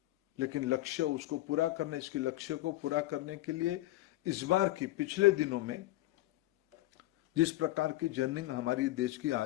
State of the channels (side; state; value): right; quieter; 16.9 dB